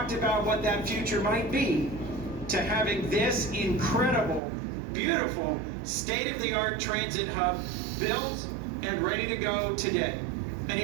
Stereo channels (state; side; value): drops out; left; at 4.4 s